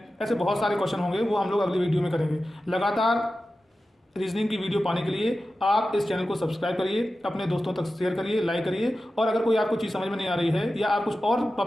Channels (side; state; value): both; normal; correlation 0.93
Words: ऐसे बहुत सारे क्वेश्चन होंगे, वो हम लोग अगली वीडियो में करेंगे। लगातार रीजनिंग की वीडियो पाने के लिए आप इस चैनल को सब्सक्राइब करिए, अपने दोस्तों तक शेयर करिए, लाइक करिए, और अगर कोई आपको चीज़ समझ में नहीं आ रही है या आप कुछ और